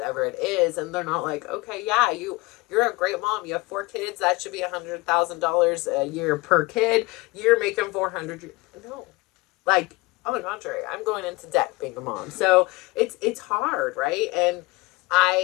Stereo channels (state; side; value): quieter; right; 22.7 dB